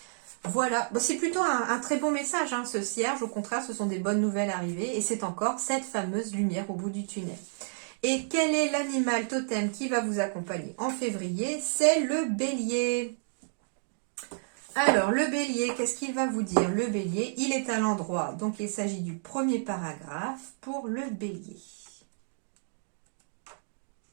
Voilà, bon, c'est plutôt un très bon message, hein, ce cierge. Au contraire, ce sont des bonnes nouvelles arrivées et c'est encore cette fameuse lumière au bout du tunnel. Et quel est l'animal totem qui va vous accompagner en février? C'est le bélier. Alors, le bélier, qu'est-ce qu'il va vous dire? Le bélier, il est à l'endroit. Donc, il s'agit du premier paragraphe pour le bélier.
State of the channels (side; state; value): left; silent; digital silence